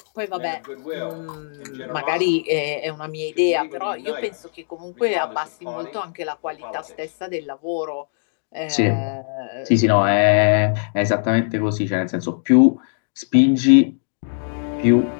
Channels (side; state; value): right; silent; digital silence